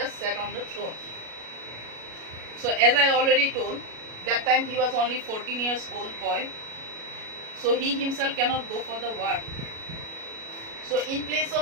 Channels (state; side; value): late; left; 37 ms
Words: sat on the throne. So as I already told, that time he was only 14 years old boy. So he himself cannot go for the war. So in place